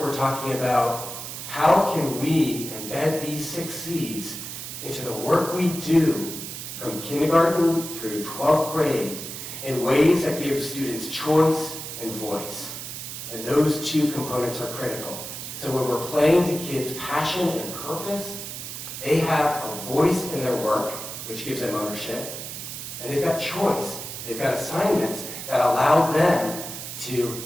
talking about how can we embed these 6 C's into the work we do from kindergarten through 12th grade in ways that give students choice and voice. And those 2 components are critical. So when we're playing to kids' passion and purpose, they have a voice in their work, which gives them ownership, and they've got choice. They've got assignments that allow them to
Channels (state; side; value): noise; right; hiss, 8 dB below the sound